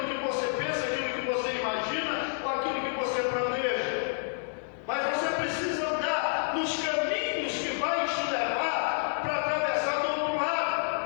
que você pensa, aquilo que você imagina, ou aquilo que você planeja. Mas você precisa andar nos caminhos que vai te levar para atravessar do outro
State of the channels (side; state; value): right; silent; digital silence